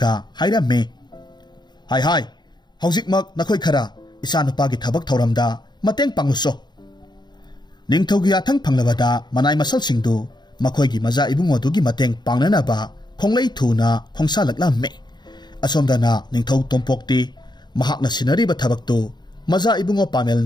hairamme hai hojikmak nakhoi khara isanupagi thabak thoramda mateng pangluso ningthogi athang phanglabada manai masal singdu makhoigi maza ibungo dugi mateng pangnanaba khonglei thuna khongsa laklamme asomdana ningthau tompokti mahakna sinariba thabaktu maza ibungo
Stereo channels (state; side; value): late; right; 0.21 ms